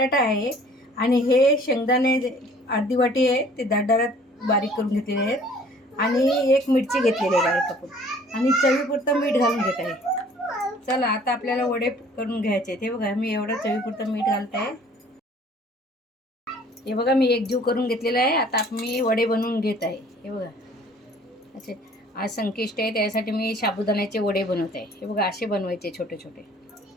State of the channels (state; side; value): normal; both; correlation 0.53